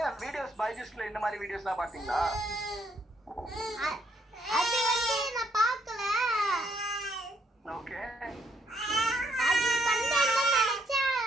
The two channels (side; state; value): both; normal; correlation 0.70